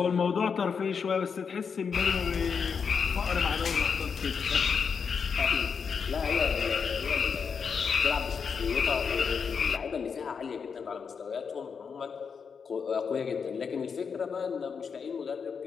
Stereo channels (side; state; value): right; quieter; 6.1 dB